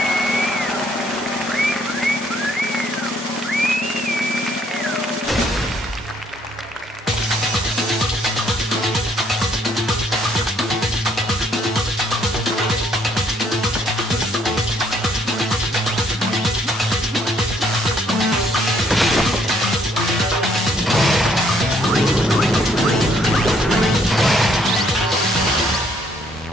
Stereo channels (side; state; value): both; normal; correlation 0.66